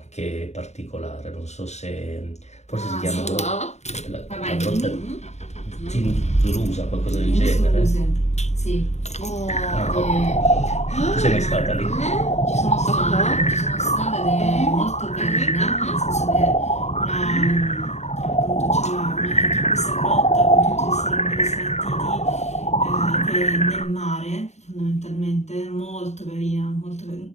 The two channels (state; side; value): late; right; 0.32 ms